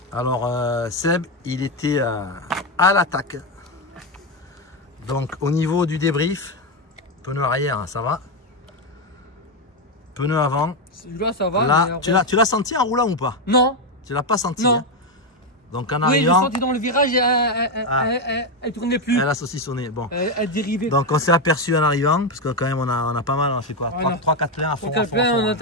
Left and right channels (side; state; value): both; normal; correlation 0.07